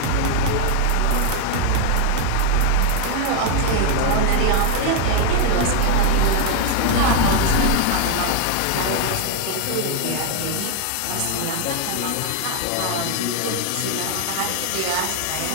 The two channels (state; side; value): different; both; correlation 0.00